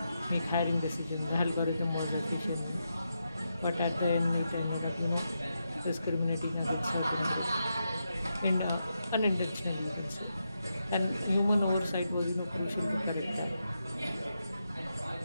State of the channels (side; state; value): both; inverted; correlation -0.85